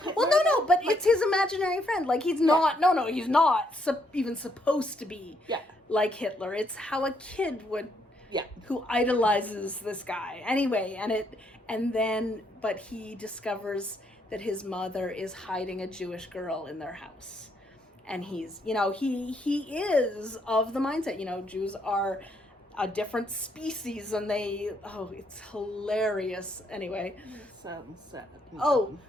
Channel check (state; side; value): normal; both; correlation 0.73